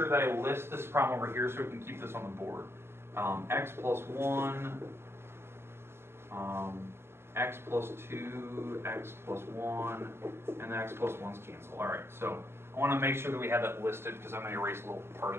that I list this problem over here so we can keep this on the board. X plus 1, x plus 2, x plus 1, and the x plus 1's cancel. All right, so I want to make sure that we have that listed because I'm going to erase a little part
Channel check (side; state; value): left; late; 0.12 ms